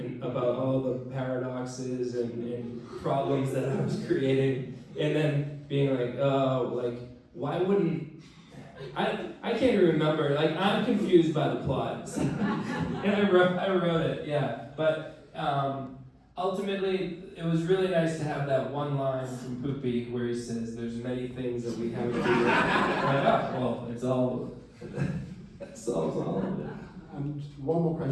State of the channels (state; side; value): identical; both; correlation 1.00